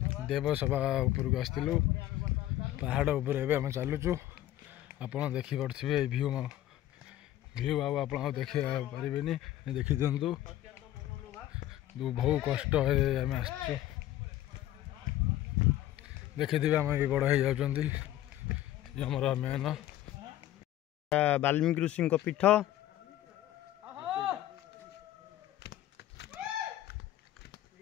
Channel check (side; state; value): right; quieter; 13.4 dB